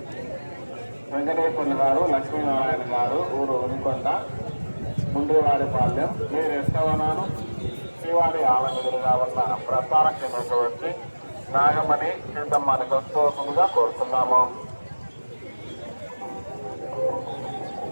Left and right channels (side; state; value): both; inverted; correlation -1.00